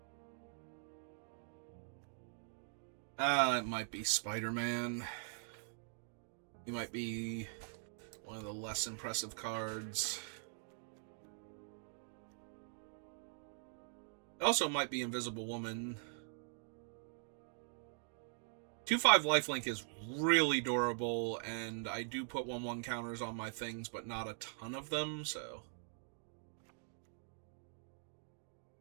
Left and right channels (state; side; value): silent; left; digital silence